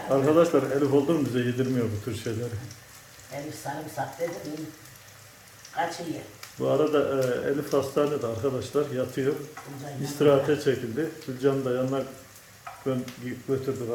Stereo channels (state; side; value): identical; both; correlation 1.00